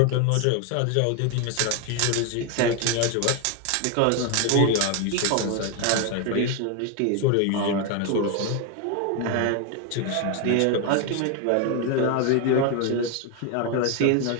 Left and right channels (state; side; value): different; both; correlation 0.01